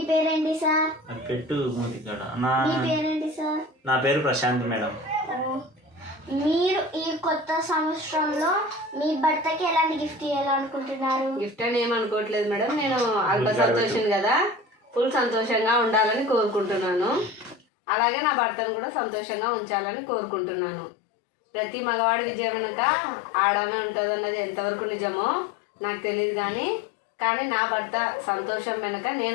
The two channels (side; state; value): right; drops out; at 17.6 s